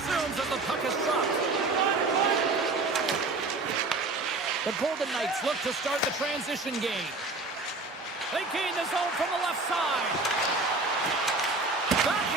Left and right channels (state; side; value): quieter; left; 3.4 dB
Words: as the puck is dropped. The Golden Knights look to start the transition game. They gain the zone from the left side. Back